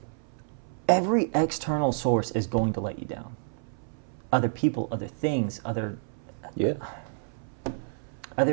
every external source is going to let you down. Other people, other things, other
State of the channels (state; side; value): silent; left; 58 dB below the other